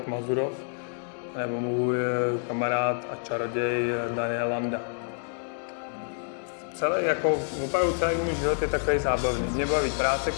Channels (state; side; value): silent; right; 59 dB below the other